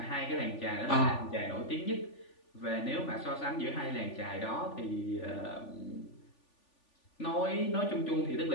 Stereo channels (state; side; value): late; right; 3.4 ms